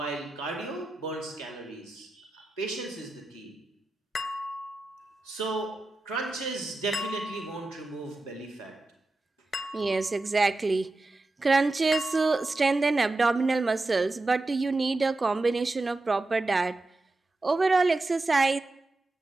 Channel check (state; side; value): quieter; left; 3.0 dB